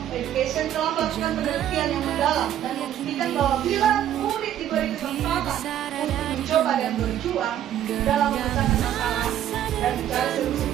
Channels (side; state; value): left; quieter; 11.2 dB